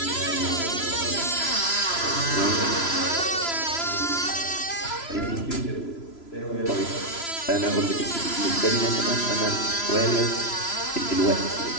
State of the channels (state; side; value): late; right; 3.0 ms